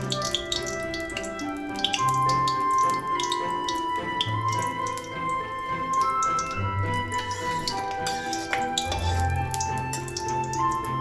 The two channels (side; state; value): both; identical; correlation 1.00